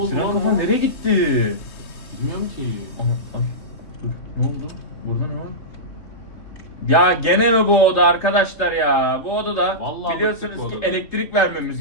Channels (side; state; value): right; late; 3.2 ms